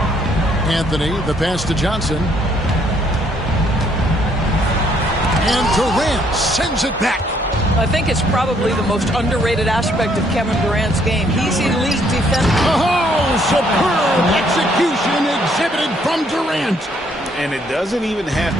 Anthony, the pass to Johnson. And Durant sends it back. I think it's probably the most underrated aspect of Kevin Durant's game. He's elite defense. Oh, superb execution exhibited from Durant. And it doesn't even have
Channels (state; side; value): normal; both; correlation 0.67